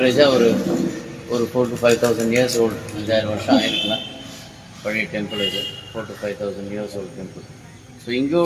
ஒரு 4,000 to 5,000 இயர்ஸ் ஓல்டு, 5,000 வருஷம் ஆகிருக்கலாம். பழைய டெம்பிள் இது 4,000 to 5,000 years old temple. So இங்கே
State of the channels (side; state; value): both; identical; correlation 1.00